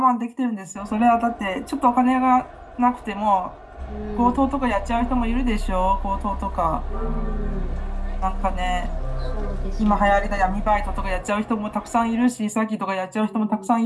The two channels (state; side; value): identical; both; correlation 1.00